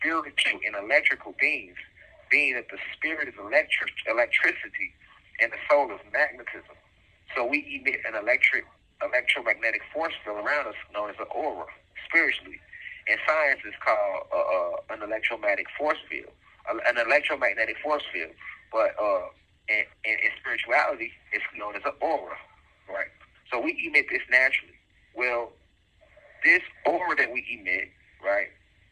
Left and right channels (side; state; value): both; identical; correlation 1.00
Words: and electrical beings, being that the spirit is electricity and the soul is magnetism. So we emit an electromagnetic force field around us known as an aura, spiritually. And science is called an electromagnetic force field, an electromagnetic force field. But in spirituality, it's known as an aura, right? So we emit this naturally. Well, this aura that we emit, right,